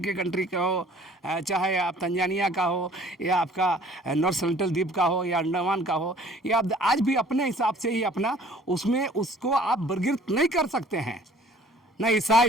कंट्री का हो, चाहे आप तंजानिया का हो या आपका नॉर्थ सेंट्रल द्वीप का हो या अंडमान का हो, या आप आज भी अपने हिसाब से ही अपना उसमें उसको आप वर्गीकृत नहीं कर सकते हैं। न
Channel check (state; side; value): normal; both; correlation 0.53